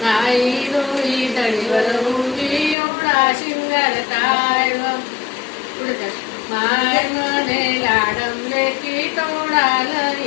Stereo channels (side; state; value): right; drops out; at 2.8 s